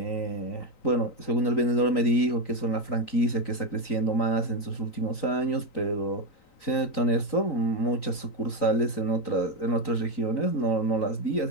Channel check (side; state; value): right; late; 3.9 ms